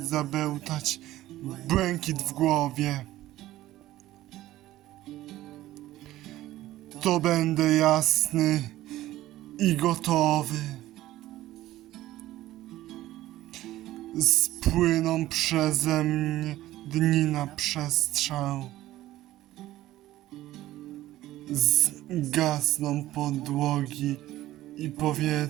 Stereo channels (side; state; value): left; quieter; 15.3 dB